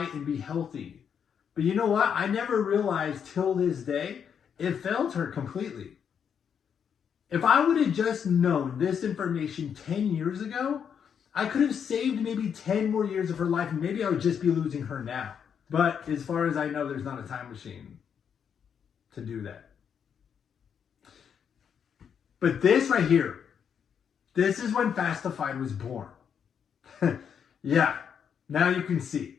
and be healthy. But you know what? I never realized till this day, it failed her completely. If I would have just known this information 10 years ago, I could have saved maybe 10 more years of her life, and maybe I would just be losing her now. But as far as I know, there's not a time machine to do that. But this right here, this is when Fastified was born. Yeah, now you can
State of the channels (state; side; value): quieter; right; 7.6 dB